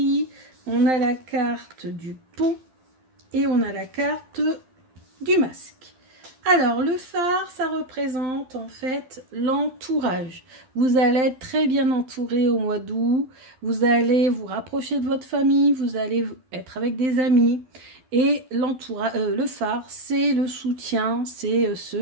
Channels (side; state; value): left; late; 12 ms